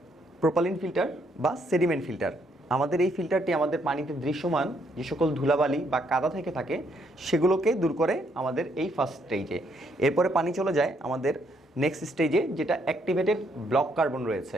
প্রোপালিন ফিল্টার বা সেডিমেন্ট ফিল্টার। আমাদের এই ফিল্টারটি আমাদের পানিতে দৃশ্যমান যে সকল ধুলাবালি বা কাদা থেকে থাকে সেগুলোকে দূর করে আমাদের এই ফার্স্ট স্টেজে। এরপরে পানি চলে যায় আমাদের নেক্সট স্টেজে, যেটা অ্যাক্টিভেটেড ব্লক কার্বন রয়েছে।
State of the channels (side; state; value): both; normal; correlation 0.72